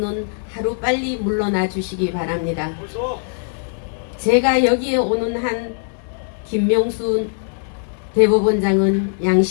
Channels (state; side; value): silent; right; digital silence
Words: 하루 빨리 물러나 주시기 바랍니다. 제가 여기에 오는 한 김명수 대법원장은